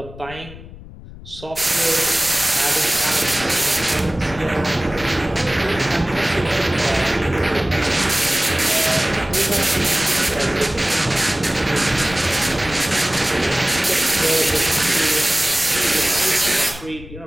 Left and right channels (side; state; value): left; noise; rumble, 17 dB below the sound